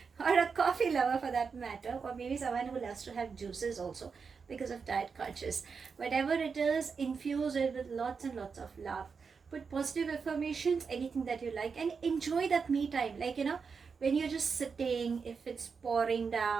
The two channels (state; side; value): quieter; left; 5.5 dB